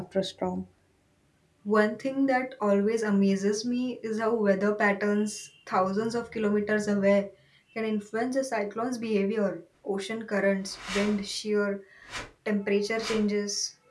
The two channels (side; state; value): both; identical; correlation 1.00